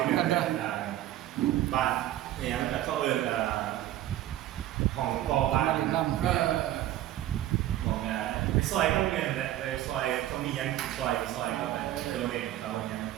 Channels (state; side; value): quieter; left; 13.6 dB